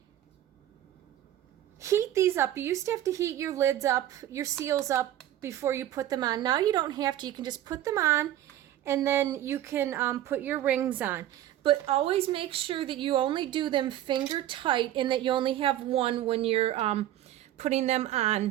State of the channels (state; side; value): quieter; left; 12.7 dB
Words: heat these up. You used to have to heat your lids up, your seals up before you put them on. Now you don't have to. You can just put them on, and then you can put your rings on. But always make sure that you only do them finger tight, and that you only have one when you're putting them